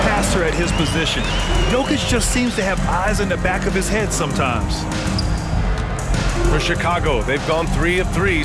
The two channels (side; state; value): both; identical; correlation 1.00